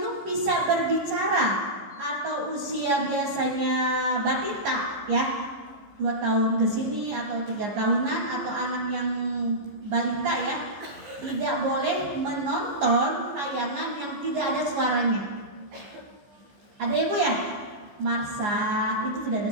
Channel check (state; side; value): late; left; 14 ms